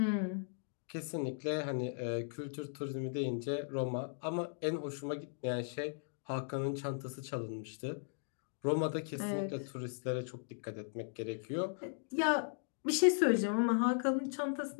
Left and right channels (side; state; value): right; silent; digital silence